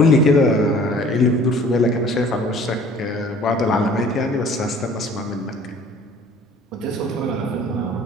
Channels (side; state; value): both; normal; correlation 0.51